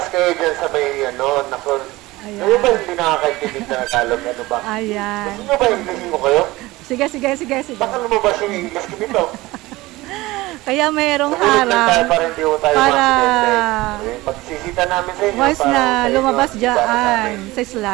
kayo dyan sa may, nakon. Ayan. Kayo ba hindi nakakaintindi na Tagalog? Ano ba? Ayan. Gusto nyo ba Inglesin ko kayo? Sige. Baka lumabas yung English ko dito. Kaya mayroong Sumunod lang tayo harang para hindi ko tayo para ma-accidente. Pagsisita namin sa inyo. once para na sa inyo, lumabas para sa dyan amin. sa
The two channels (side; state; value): left; quieter; 19.6 dB